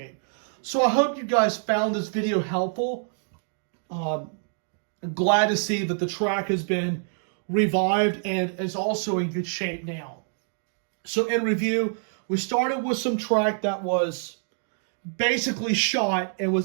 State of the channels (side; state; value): left; silent; digital silence